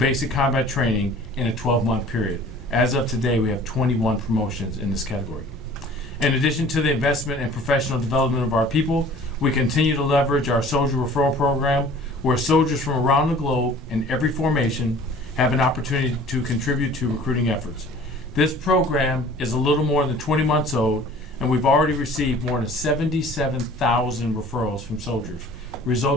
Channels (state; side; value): normal; both; correlation 0.48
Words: combat training in a 12-month period. As of today, we have 21 promotions in this category. In addition to the investment and professional development of our people, we continue to leverage our soldier referral program, where soldiers from around the globe in every formation have an opportunity to contribute to recruiting efforts. This program is a little more than 20 months old, and we've already received more than 77,000 referrals from soldiers,